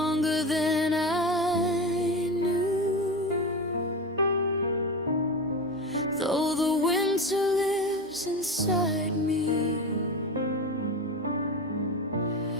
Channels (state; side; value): normal; both; correlation 0.24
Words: than I knew. Though the winter lives inside me,